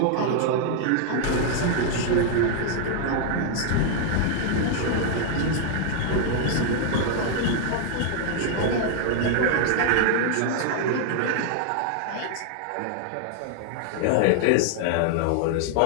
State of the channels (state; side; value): different; both; correlation 0.00